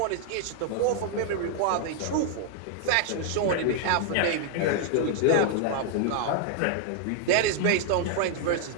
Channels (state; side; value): different; both; correlation 0.00